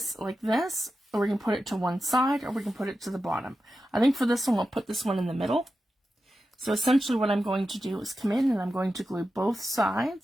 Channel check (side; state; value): both; normal; correlation 0.91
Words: like this, or we can put it to one side, or we can put it to the bottom. I think for this one, we'll put this one in the middle. So essentially what I'm going to do is come in and I'm going to glue both